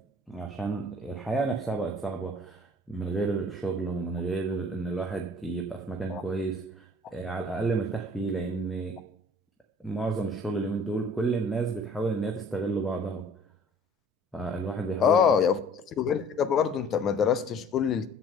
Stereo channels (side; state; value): both; normal; correlation 0.51